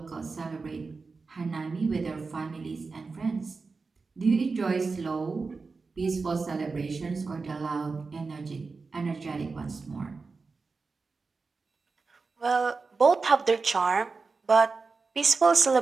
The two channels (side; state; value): left; quieter; 4.3 dB